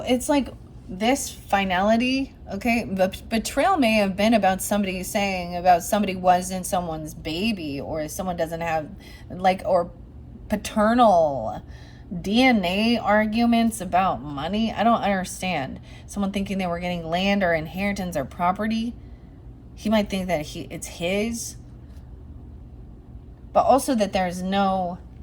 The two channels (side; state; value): both; identical; correlation 1.00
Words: it's like this finality, okay? But betrayal may have been about somebody saying about somebody wasn't someone's baby, or someone doesn't have like, or paternal DNA arguments about money. I don't understand. Someone thinking they were getting land or inheritance or property. He might think that it's his, but also that there's no,